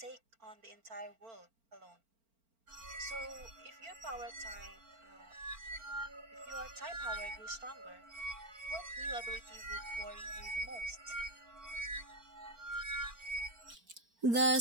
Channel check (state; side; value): late; left; 4.4 ms